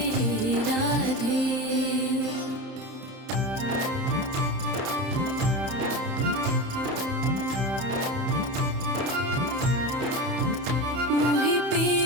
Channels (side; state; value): left; late; 31 ms